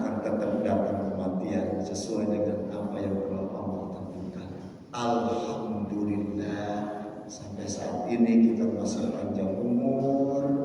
tetap datang kematian sesuai dengan apa yang telah Allah tentukan. Alhamdulillah, sampai saat ini kita masih panjang umur,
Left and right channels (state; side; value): identical; both; correlation 1.00